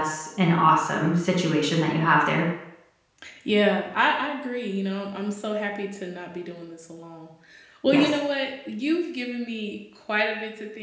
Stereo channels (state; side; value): identical; both; correlation 1.00